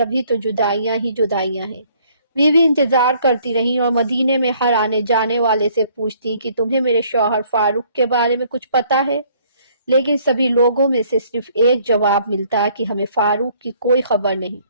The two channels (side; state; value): both; inverted; correlation -0.62